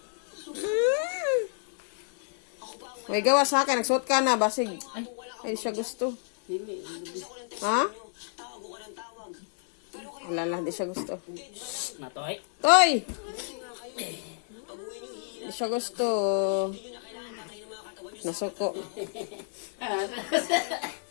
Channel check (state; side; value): silent; right; digital silence